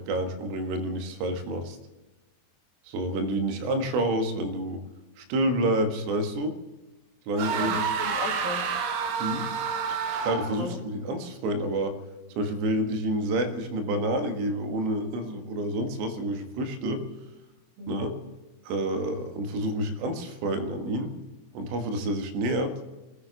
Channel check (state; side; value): late; left; 24 ms